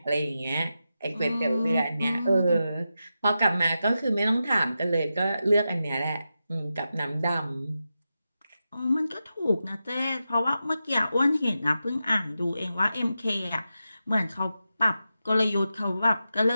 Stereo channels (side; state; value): both; inverted; correlation -0.90